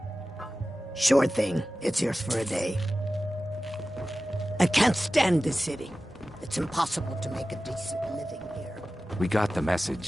Sure thing. It's yours for a day. I can't stand this city. It's impossible to make a decent living here. We got the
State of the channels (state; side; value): normal; both; correlation 0.95